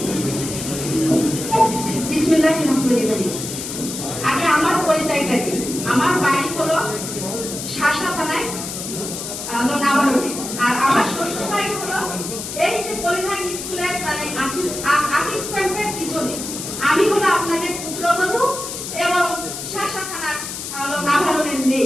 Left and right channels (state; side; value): noise; left; hiss, 7 dB below the sound